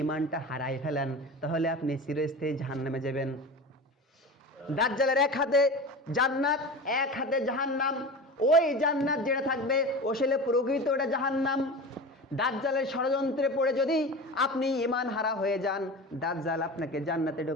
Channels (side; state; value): both; normal; correlation 0.31